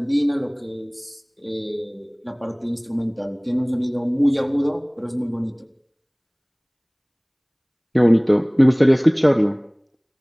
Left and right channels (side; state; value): both; identical; correlation 1.00